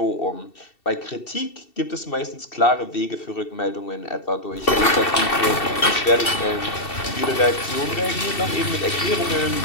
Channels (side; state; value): right; late; 2.7 ms